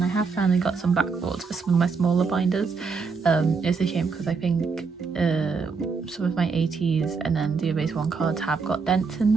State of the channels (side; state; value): left; quieter; 4.9 dB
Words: I have finally got some backboards for some of my smaller binders. It's a shame because I think some of my ATEEZ and then the Erase 1 cards have got dents in